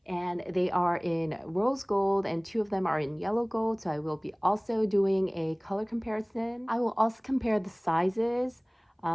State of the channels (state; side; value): identical; both; correlation 1.00